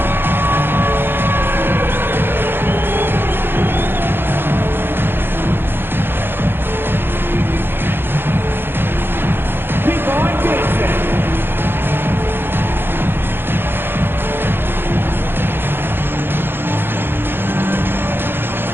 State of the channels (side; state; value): left; late; 0.10 ms